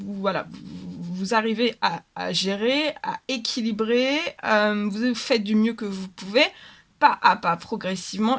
arrivez à gérer, à équilibrer, vous faites du mieux que vous pouvez, pas à pas, progressivement,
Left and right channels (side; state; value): both; identical; correlation 1.00